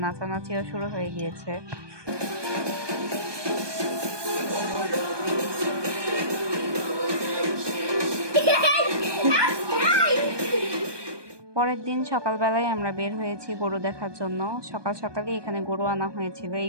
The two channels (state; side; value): late; left; 1.2 ms